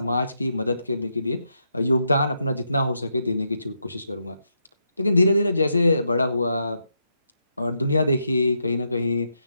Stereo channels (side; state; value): both; inverted; correlation -0.82